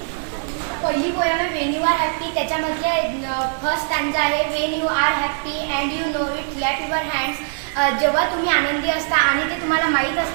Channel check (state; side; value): silent; left; 60 dB below the other